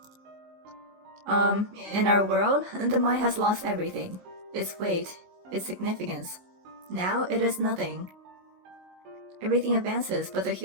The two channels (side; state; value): left; late; 19 ms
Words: In our world, the mind has lost everything. Its weight, its significance. Now it is nothing. Everything advances, but the